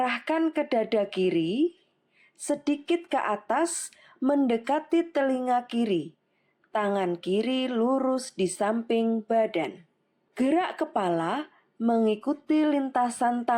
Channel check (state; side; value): identical; both; correlation 1.00